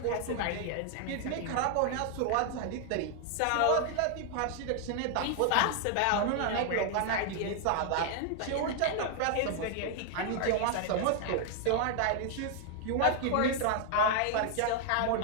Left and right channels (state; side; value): different; both; correlation 0.00